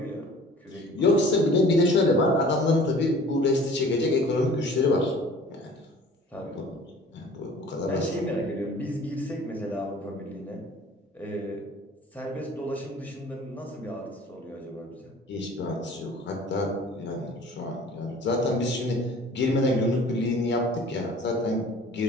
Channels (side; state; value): both; normal; correlation 0.48